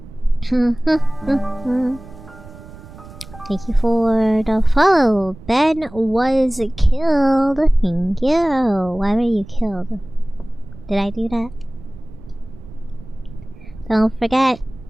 Thank you for the follow. Ben was killed. Thank you. Why were you killed? Did I do that? Don't forget,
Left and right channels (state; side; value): noise; right; rumble, 18 dB below the sound